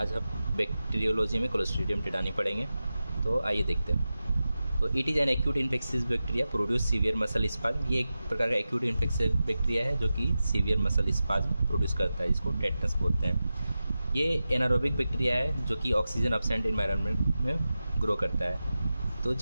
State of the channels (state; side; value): inverted; both; correlation -0.93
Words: हम bacteriology में क्लोस्ट्रीडियम टेटानी पढ़ेंगे। तो आइए देखते हैं। तो it is an acute infectious bacteria produce severe muscle spasm. ये एक प्रकार का एक्यूट इन्फेक्शियस बैक्टीरिया है जो कि सीवियर मसल स्पाज्म प्रोड्यूस करता है, जिसको टेटनस बोलते हैं। ये एनारोबिक बैक्टीरिया है जो कि ऑक्सीजन एब्सेंट इन्वायरमेंट में ग्रो करता है। तो